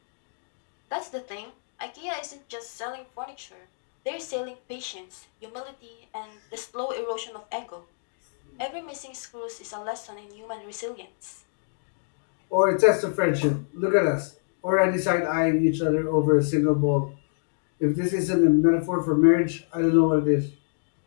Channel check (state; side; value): silent; right; digital silence